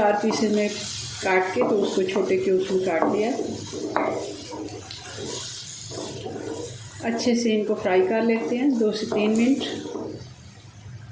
पीसेज में काट के तो उसको छोटे क्यूब्स में काट दिया। अच्छे से इनको फ्राई कर लेते हैं 2 से 3 मिनट।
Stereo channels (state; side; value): identical; both; correlation 1.00